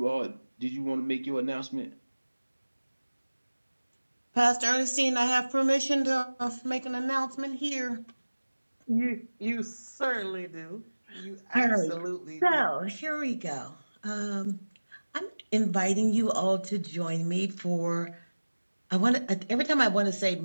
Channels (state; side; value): inverted; both; correlation -1.00